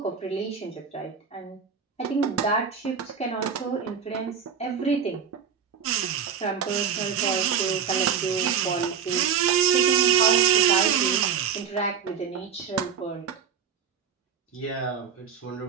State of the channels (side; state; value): left; quieter; 7.1 dB